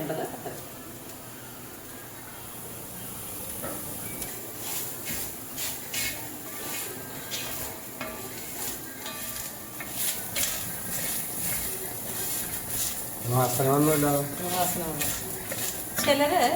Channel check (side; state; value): both; identical; correlation 1.00